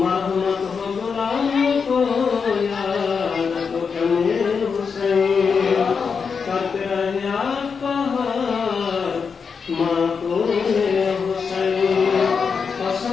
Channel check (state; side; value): quieter; right; 5.7 dB